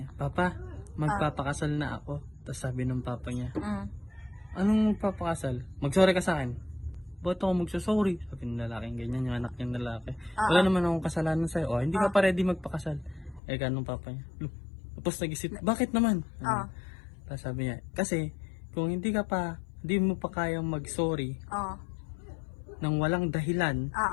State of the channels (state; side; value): drops out; right; at 13.4 s